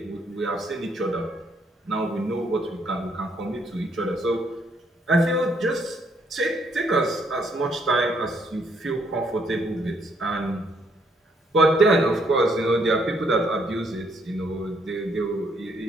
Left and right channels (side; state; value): both; normal; correlation 0.70